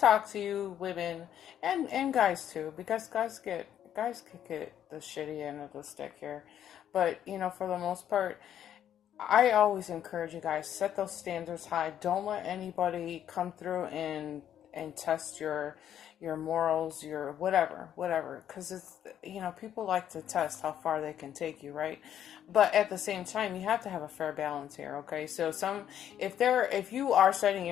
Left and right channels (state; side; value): quieter; right; 10.2 dB